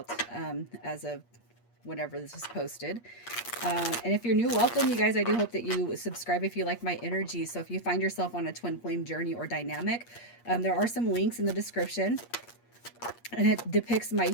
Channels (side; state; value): right; late; 8.5 ms